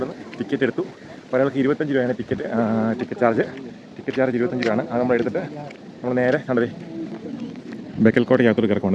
ടിക്കറ്റ് എടുത്തു. ഒരാൾക്ക് 25 രൂപയാണ് ടിക്കറ്റ് ചാർജ്. ടിക്കറ്റ് ചാർജ് 25 രൂപയാണ്. അത് നമ്മൾ എടുത്തിട്ട് നമ്മൾ നേരെ കണ്ടതേ ബേക്കൽ കോട്ടയ്ക്കകത്തോട്ട്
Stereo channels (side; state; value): both; identical; correlation 1.00